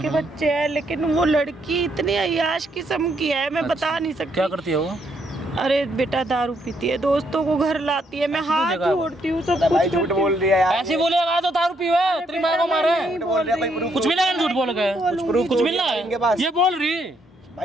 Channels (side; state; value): both; normal; correlation 0.73